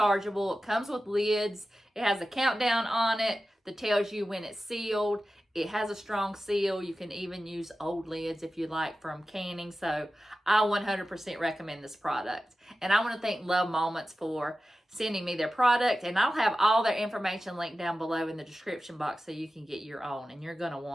It comes with lids. It has a countdown on it that tells you when it's sealed. It has a strong seal. You can even use old lids if you like from canning. So I 100% recommend this product. And I want to thank Love Moments for sending me their product. And I'll have all their information linked down below in the description box so you can get your own. And you're going to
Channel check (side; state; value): both; normal; correlation 0.94